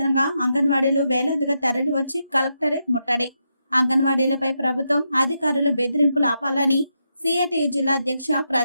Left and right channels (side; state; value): both; inverted; correlation -0.83